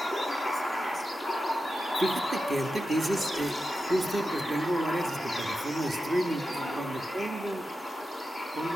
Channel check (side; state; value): both; normal; correlation 0.91